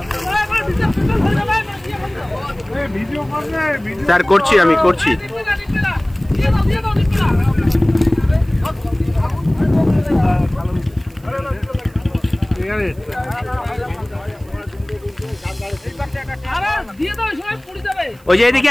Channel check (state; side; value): noise; right; hiss, 29 dB below the sound